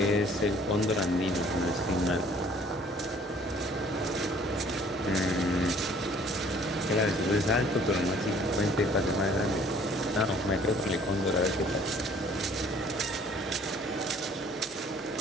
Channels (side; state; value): both; normal; correlation 0.56